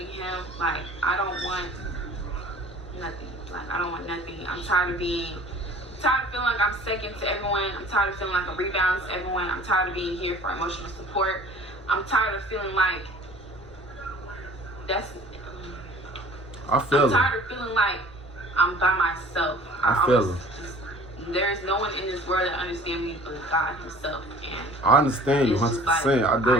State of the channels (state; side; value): normal; both; correlation 0.48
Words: him. Like, I don't want nothing. Like, I don't want nothing. I'm tired of feeling like I'm second to everyone. I'm tired of feeling like a rebound to everyone. I'm tired of being here for emotional support. I'm tired of feeling like I'm tired of feeling like I'm by myself. I feel it. There's no one in this world that understands me but God himself. And I understand you 100%. Like, I do.